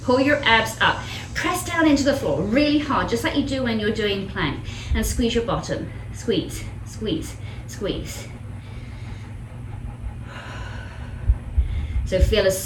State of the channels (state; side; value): identical; both; correlation 1.00